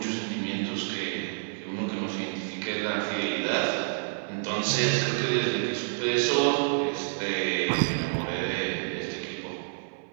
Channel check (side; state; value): left; silent; 59 dB below the other